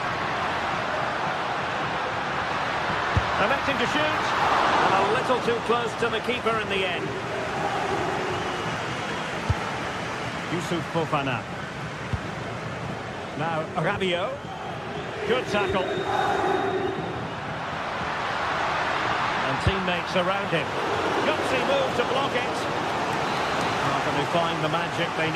Electing to shoot, and a little too close to the keeper in the end. Youssouf Fofana. Now Rabiot. Good tackle. And teammates around him. Gutsy move to block it. How can they find the magic they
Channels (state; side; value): identical; both; correlation 1.00